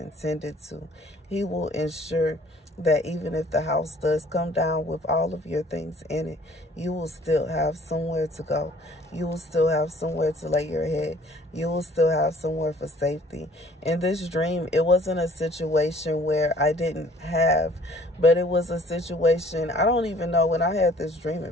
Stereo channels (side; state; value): both; normal; correlation 0.55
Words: to. He will ensure that even if the house does come down with all of your things in it, you will still have somewhere to go. You will still have somewhere to lay your head. You will still have somewhere for safety. In this dream, it wasn't a situation where I didn't have, but it was a situation, I don't even know when I had this dream